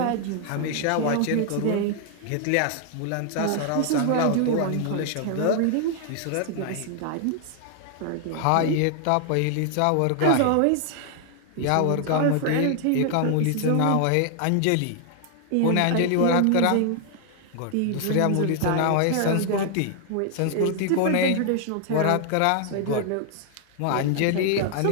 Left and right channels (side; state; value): both; different; correlation 0.00